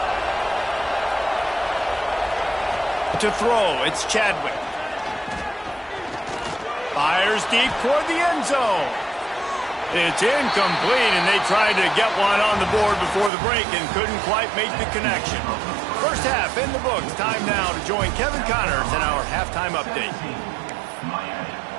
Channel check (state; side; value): drops out; left; at 13.3 s